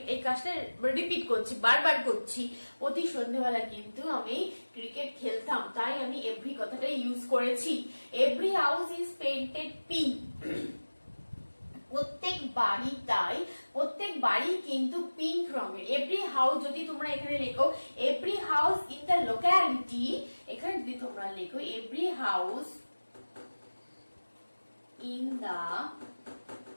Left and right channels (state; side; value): inverted; both; correlation -1.00